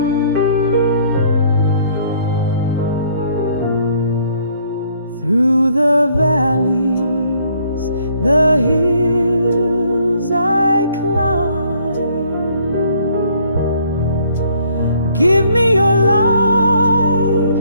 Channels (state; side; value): inverted; both; correlation -0.64